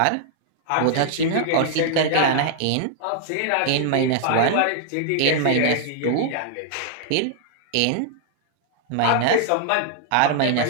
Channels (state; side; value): different; both; correlation -0.01